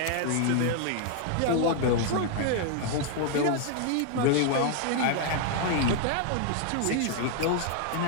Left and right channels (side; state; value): both; different; correlation 0.00